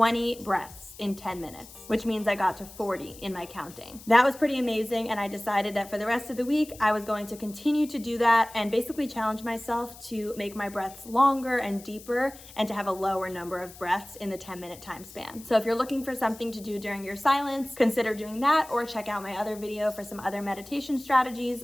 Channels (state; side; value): noise; left; hiss, 19 dB below the sound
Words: breaths in 10 minutes, which means I got to 40 in my counting. That was pretty amazing, and I decided that for the rest of the week, I was going to continue to do that and basically challenge myself to make my breaths longer and deeper and to have a lower number of breaths in the 10-minute time span. So if you're looking for something to do during your silence, consider doing that, or check out my other video for some other meditation strategies,